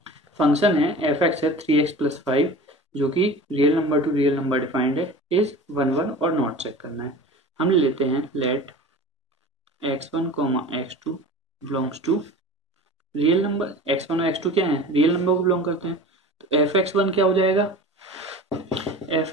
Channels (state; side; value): normal; both; correlation 0.37